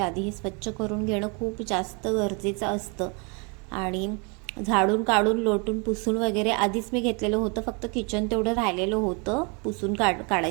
हे स्वच्छ करून घेणं खूप जास्त गरजेचं असतं. आणि झाडून काढून लोटून पुसून वगैरे आधीच मी घेतलेलं होतं, फक्त किचन तेवढं राहिलेलं होतं पुसून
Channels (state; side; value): quieter; left; 33.0 dB